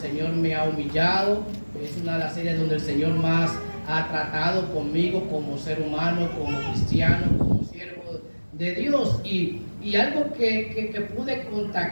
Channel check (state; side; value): inverted; both; correlation -1.00